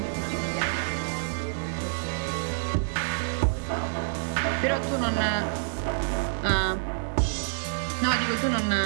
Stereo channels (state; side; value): silent; left; digital silence